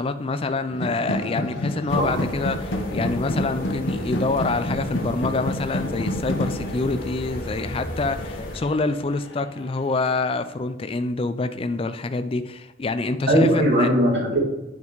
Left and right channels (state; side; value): normal; both; correlation 0.47